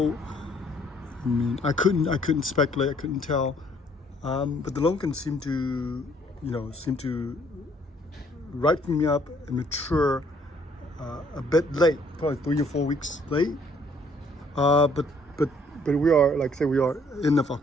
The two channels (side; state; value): both; normal; correlation 0.63